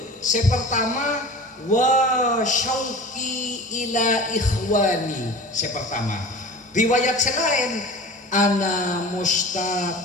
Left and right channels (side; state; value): both; normal; correlation 0.37